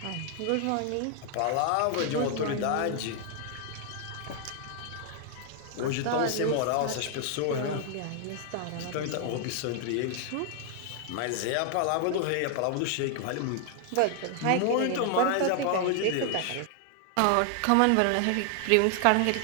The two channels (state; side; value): different; both; correlation 0.00